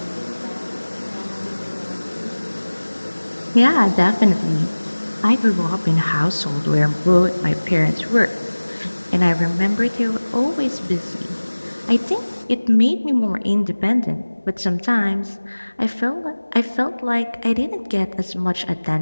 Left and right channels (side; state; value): both; inverted; correlation -1.00